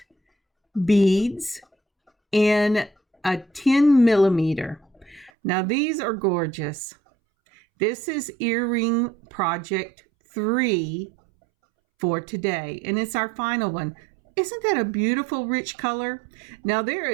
beads in a 10 millimeter. Now these are gorgeous. This is earring project 3 for today, and it's our final one. Isn't that a beautiful rich color? Now there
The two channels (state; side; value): drops out; left; at 5.3 s